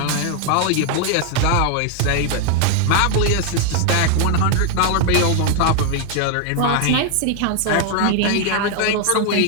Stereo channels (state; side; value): different; both; correlation 0.00